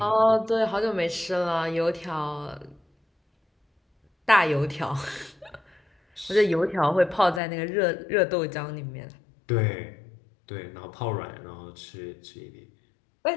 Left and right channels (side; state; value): right; drops out; at 7.4 s